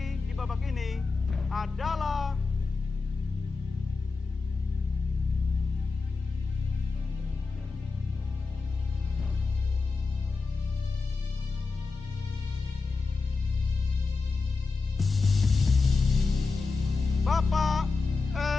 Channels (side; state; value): right; quieter; 4.2 dB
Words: di babak ini adalah Bapak